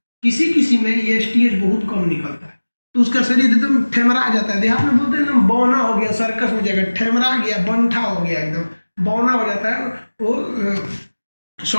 किसी किसी में ये STH बहुत कम निकलता है तो उसका शरीर एकदम ठेमरा जाता है। देहात में बोलते हैं ना, बौना हो गया, सर्कस में जाकर ठेमरा गया, बंठा हो गया, एकदम बौना हो जाता है, वो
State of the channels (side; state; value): both; inverted; correlation -1.00